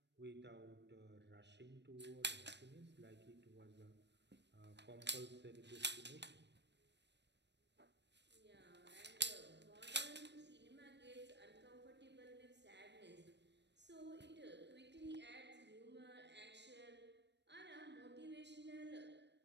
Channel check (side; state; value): left; late; 0.50 ms